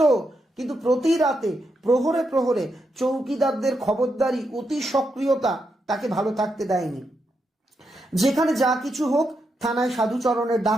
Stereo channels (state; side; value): normal; both; correlation 0.83